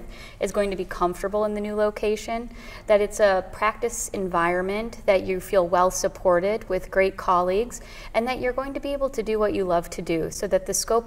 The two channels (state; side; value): identical; both; correlation 1.00